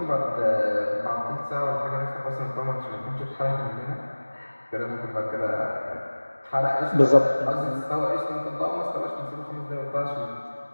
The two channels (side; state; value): both; inverted; correlation -1.00